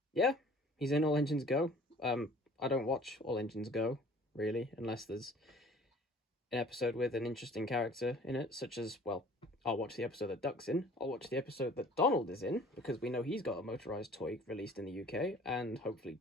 he's in All Engines Go. I don't watch All Engines Go, really, unless there's an episode with an interesting character in it, such as, well, I'll watch the episode that Duck's in, I'll watch the episode that Donald is in, because we know he's got a motorized toy released in the UK, and hopefully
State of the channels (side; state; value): both; normal; correlation 0.50